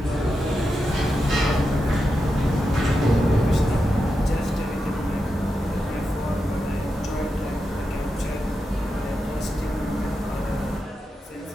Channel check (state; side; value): normal; both; correlation 0.88